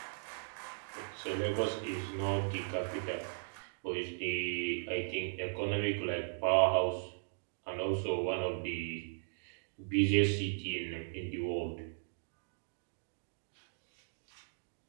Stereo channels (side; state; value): left; silent; digital silence